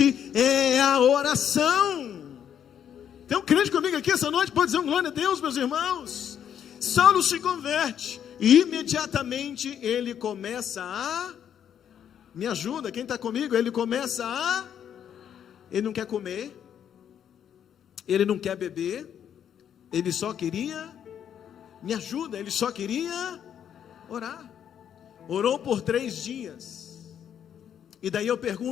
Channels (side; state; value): right; quieter; 9.1 dB